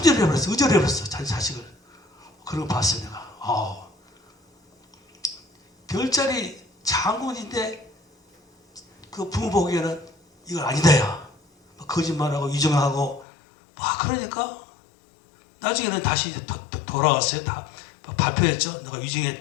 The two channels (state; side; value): drops out; right; at 13.2 s